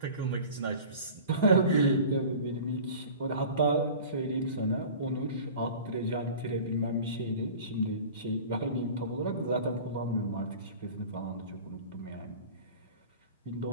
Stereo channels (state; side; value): inverted; both; correlation -0.40